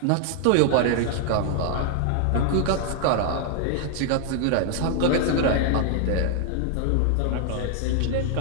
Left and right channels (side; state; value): both; different; correlation 0.00